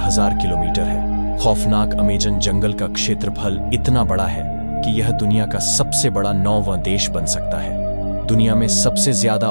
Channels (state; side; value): inverted; both; correlation -1.00